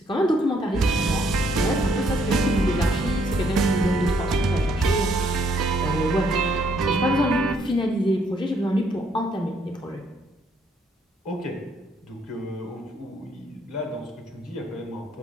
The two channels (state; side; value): normal; both; correlation 0.69